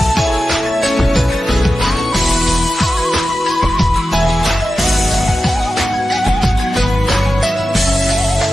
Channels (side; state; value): both; normal; correlation 0.92